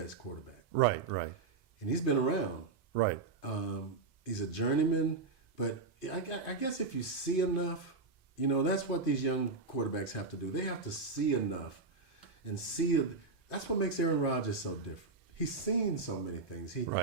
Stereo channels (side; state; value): left; quieter; 4.1 dB